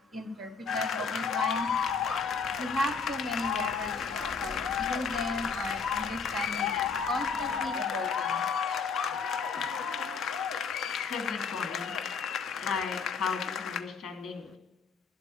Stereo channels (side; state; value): right; quieter; 5.3 dB